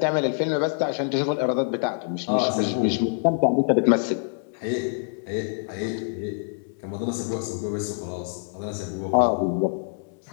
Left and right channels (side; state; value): right; silent; digital silence